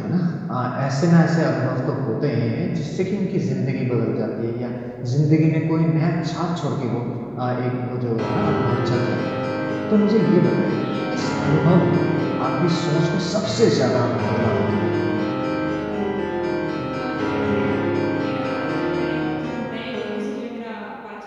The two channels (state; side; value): identical; both; correlation 1.00